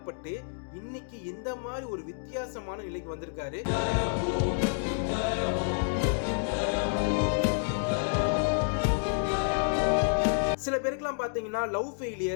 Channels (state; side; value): silent; right; digital silence